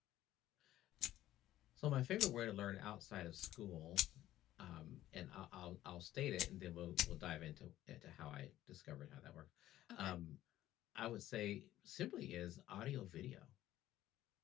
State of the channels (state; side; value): quieter; right; 13.9 dB